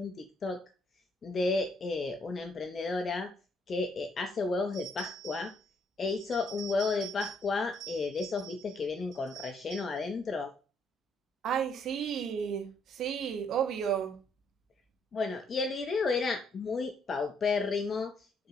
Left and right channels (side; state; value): both; normal; correlation 0.70